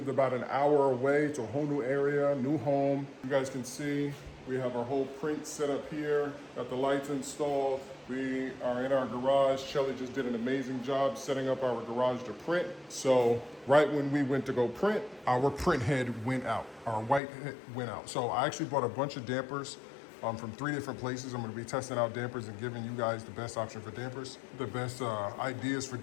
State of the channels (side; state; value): right; drops out; at 17.2 s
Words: about an hour away to a whole new area, new home. You guys can see we have our whole print set up here, got the lights installed. We are in our garage. Shelly just did an amazing job setting up our garage to print. So right when we went to go print, our print head went out, our white head went out. So I actually bought a bunch of dampers from 3 different places. I'm gonna be testing out dampers and giving you guys the best option for dampers, the best ideas for